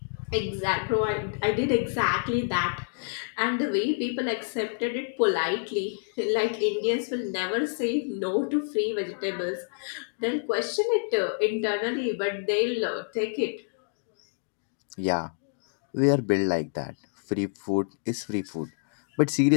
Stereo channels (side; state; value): right; silent; digital silence